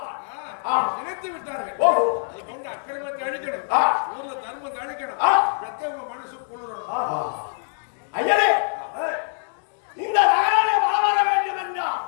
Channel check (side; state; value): right; silent; digital silence